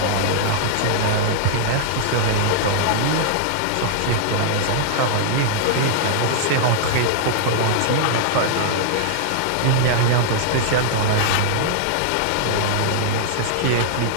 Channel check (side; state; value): both; different; correlation -0.01